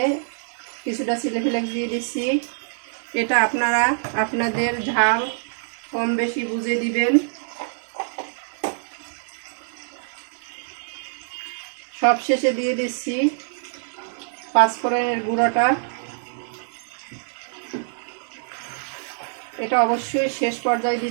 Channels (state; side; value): silent; left; 57 dB below the other